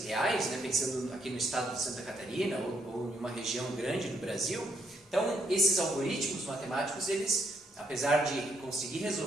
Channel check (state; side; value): normal; both; correlation 0.75